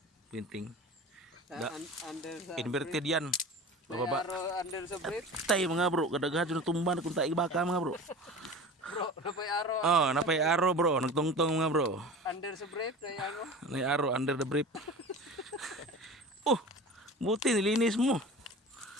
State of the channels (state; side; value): normal; both; correlation 0.35